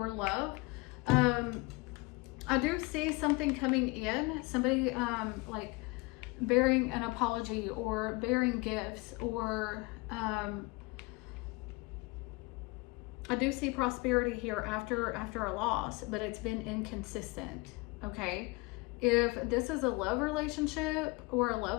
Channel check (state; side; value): quieter; right; 25.6 dB